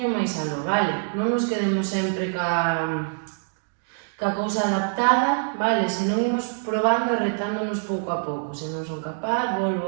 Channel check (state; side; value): silent; left; digital silence